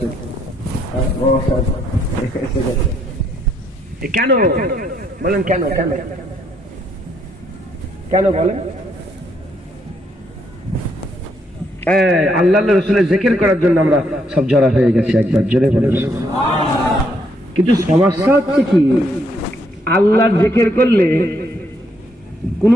এসে গেছে কেন বলেন? কেন কেন কেন বলেন? আল্লাহ রসুলের জিকির করার জন্য আমরা সব জড়া হয়ে গেছি। একবার জোরে বলেন। কিন্তু সমস্যা হচ্ছে কি, আল্লাহর জিকির করলে কোনো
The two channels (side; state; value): both; normal; correlation 0.73